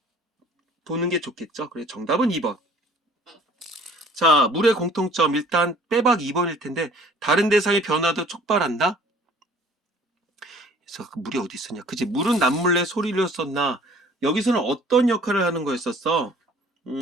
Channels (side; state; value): both; normal; correlation 0.52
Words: 보는 게 좋겠죠. 그래, 정답은 2번. 자, 물의 공통점 일단 빼박 2번일 텐데, 다른 대상의 변화도 촉발한다. 그래서 그 물이 어디 있었냐? 그치, 물은 남몰래 소리를 썼나? 여기서는 어떤 역할을 하는 거였었어?